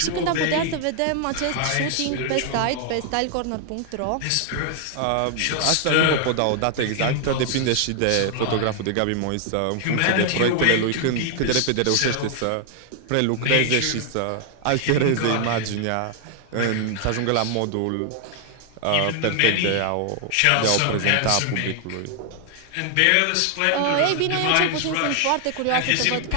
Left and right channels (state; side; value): different; both; correlation 0.00